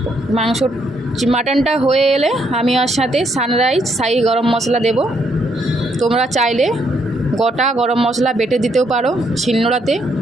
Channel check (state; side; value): normal; both; correlation 0.73